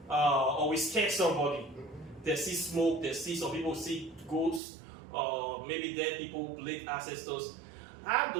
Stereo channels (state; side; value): drops out; left; at 4.6 s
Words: or will scare somebody. They see smoke. They see some people see ghosts, maybe dead people, late ancestors. How